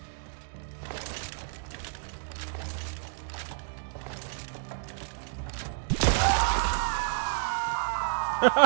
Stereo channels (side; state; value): left; silent; digital silence